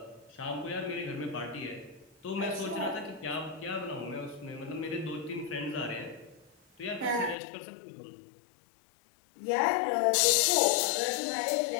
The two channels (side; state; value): right; drops out; at 7.4 s